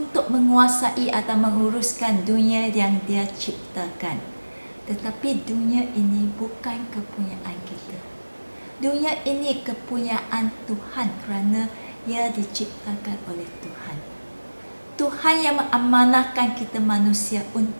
menguasai atau menguruskan dunia yang Dia ciptakan. Tetapi dunia ini bukan kepunyaan kita. Dunia ini kepunyaan Tuhan kerana ia diciptakan oleh Tuhan. Tuhan yang mengamanahkan kita manusia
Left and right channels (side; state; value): both; inverted; correlation -1.00